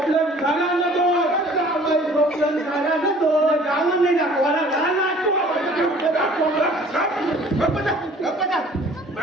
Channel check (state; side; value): normal; both; correlation 0.51